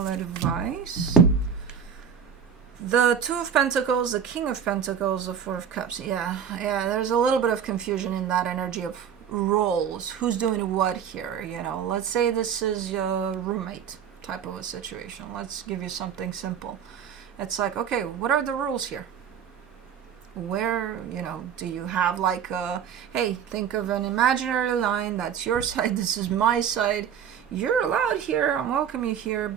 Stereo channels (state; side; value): quieter; left; 8.0 dB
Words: advice. The Two of Pentacles, the King of Pentacles, the Four of Cups. Yeah, there's a little bit of confusion in that energy of roles. Who's doing what here, you know? Let's say this is your roommate type of a situation. Let's give you something simple. It's like, okay, what are the rules here? Where, you know, do you have like a, hey, think of an imaginary line, that's your side, this is my side. You're allowed here, I welcome you here,